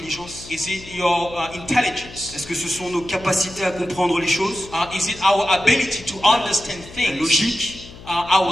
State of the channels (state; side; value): noise; left; hum, 17 dB below the sound